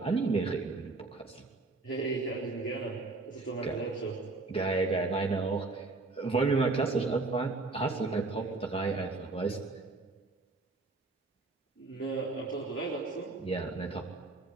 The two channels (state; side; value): quieter; left; 3.5 dB